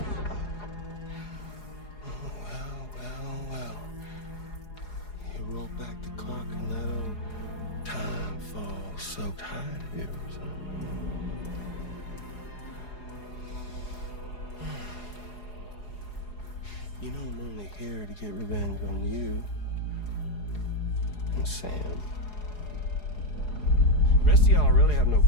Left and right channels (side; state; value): right; late; 4.8 ms